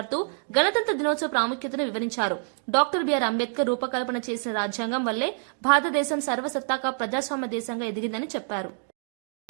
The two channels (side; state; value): left; silent; 60 dB below the other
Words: గణతంత్ర దినోత్సవ ప్రాముఖ్యతను వివరించారు. డాక్టర్ బిఆర్ అంబేద్కర్ రూపకల్పన చేసిన రాజ్యాంగం వల్లే భారతదేశం సర్వసత్తాక ప్రజాస్వామ్య దేశంగా ఎదిగిందని చెప్పారు.